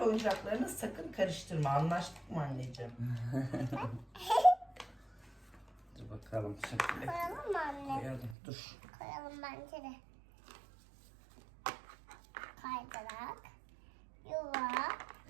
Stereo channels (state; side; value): drops out; left; at 8.3 s